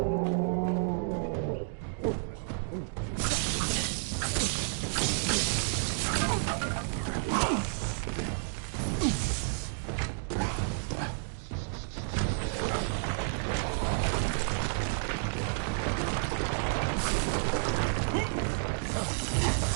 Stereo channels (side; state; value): left; silent; digital silence